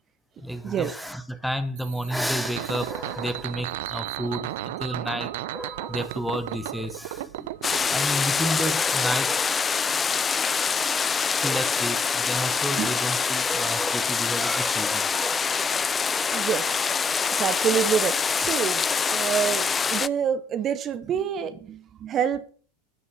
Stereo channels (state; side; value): normal; both; correlation 0.75